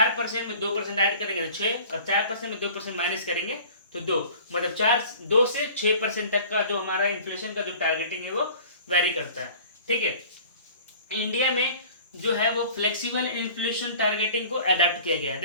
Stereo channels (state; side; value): inverted; both; correlation -0.46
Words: में 2% ऐड करेंगे तो 6, और 4% में 2% माइनस करेंगे तो 2, मतलब 2 से 6% तक का जो हमारा इन्फ्लेशन का जो टारगेटिंग है वो वेरी करता है। ठीक है, इंडिया में जो है वो फ्लेक्सिबल इन्फ्लेशन टारगेटिंग को अडेप्ट किया गया है।